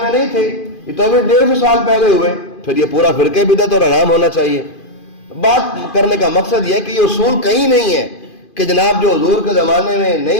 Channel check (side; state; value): right; late; 2.5 ms